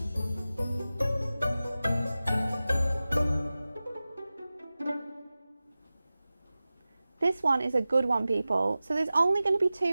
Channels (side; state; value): both; inverted; correlation -0.96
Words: This one is a good one, people. So there's only going to be